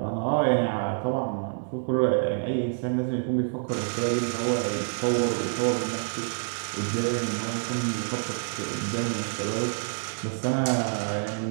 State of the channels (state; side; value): silent; left; 60 dB below the other